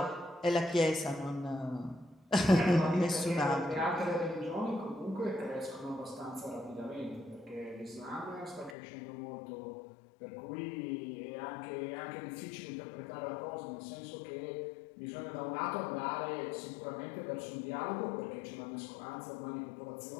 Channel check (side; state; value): right; drops out; at 8.8 s